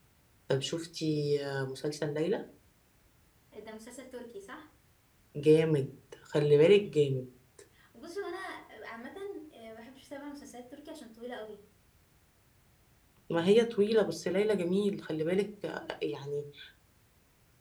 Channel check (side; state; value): both; identical; correlation 1.00